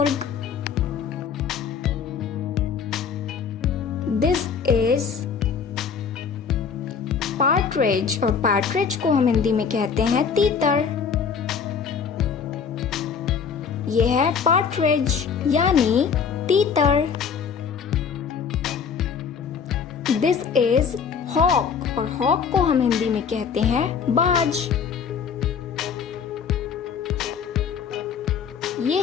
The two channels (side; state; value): right; quieter; 6.5 dB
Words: दिस इज पार्ट्रिज और पार्ट्रिज को हम हिंदी में कहते हैं तीतर। ये है पार्ट्रिज यानी तीतर। दिस इज हॉक और हॉक को हम हिंदी में कहते हैं बाज। ये